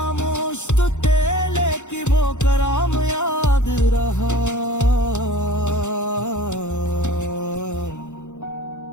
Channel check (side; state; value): right; late; 0.84 ms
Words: तो तेले की वो कराम याद रहा।